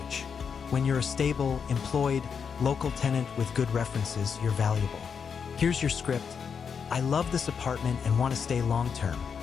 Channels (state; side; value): quieter; right; 6.5 dB